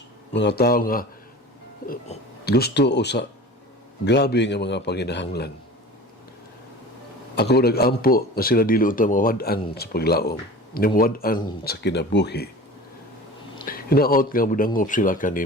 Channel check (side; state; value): both; normal; correlation 0.38